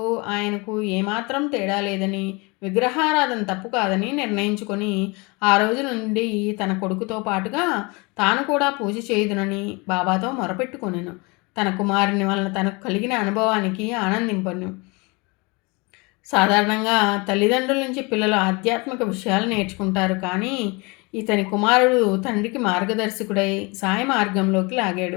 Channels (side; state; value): right; quieter; 27.7 dB